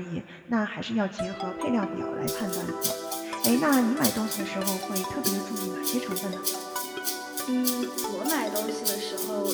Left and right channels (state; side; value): identical; both; correlation 1.00